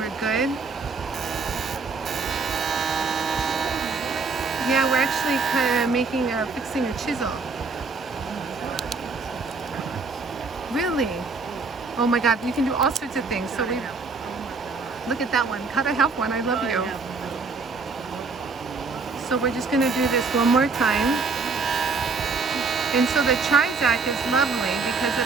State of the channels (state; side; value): quieter; left; 4.4 dB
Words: good. Yeah, we're actually kind of fixing a chisel. Really? Oh my God, you can do all sorts of things. So we look at that one. Cut a half one. I love you. So we're just gonna do this one more time. And so the Trizact is lovely because